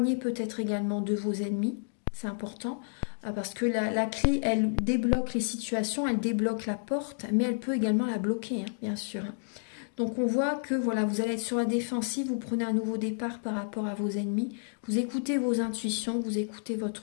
peut-être également de vos ennemis, c'est important. Parce que la clé, elle débloque les situations, elle débloque la porte, mais elle peut également la bloquer, hein, bien sûr. Donc on voit que voilà, vous allez être sur la défensive, vous prenez un nouveau départ par rapport à vos ennemis, vous écoutez vos intuitions, vous écoutez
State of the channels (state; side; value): silent; right; digital silence